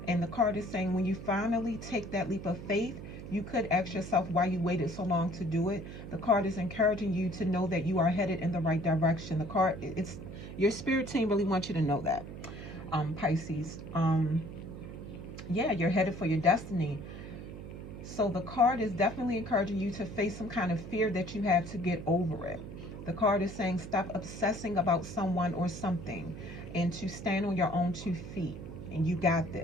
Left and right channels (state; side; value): noise; right; hum, 11 dB below the sound